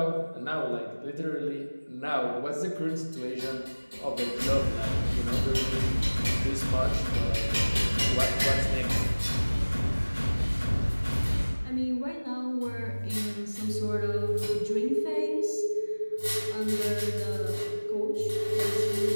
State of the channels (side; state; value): both; inverted; correlation -1.00